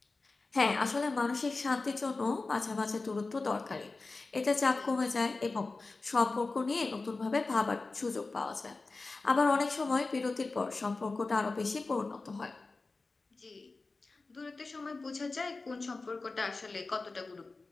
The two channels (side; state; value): right; quieter; 3.7 dB